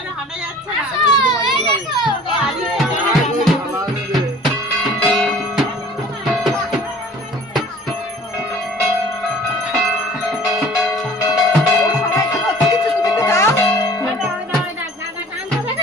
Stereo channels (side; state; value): both; normal; correlation 0.48